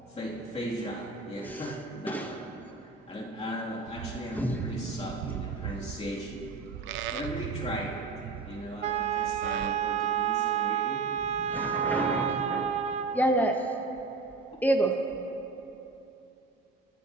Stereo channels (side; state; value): left; quieter; 3.8 dB